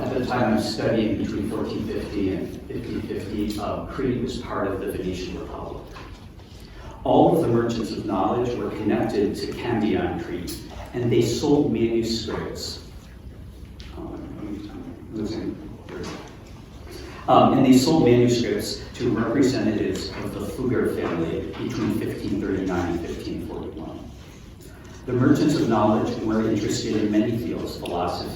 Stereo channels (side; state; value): both; identical; correlation 1.00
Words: studying between 1450 and 1550, Crete was part of the Venetian Republic. All of the merchants of knowledge were connected to Candia on Crete, and they sold manuscripts. And they sold manuscripts to representatives of the Fugger family between 1539 and 1541. The merchants of knowledge were interested in many fields: